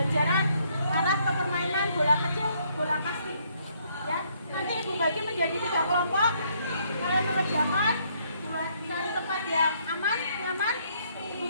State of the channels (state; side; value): inverted; both; correlation -0.69